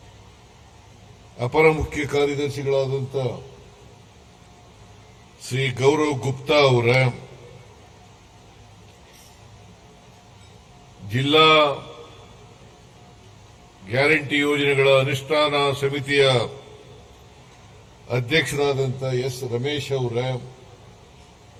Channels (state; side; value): identical; both; correlation 1.00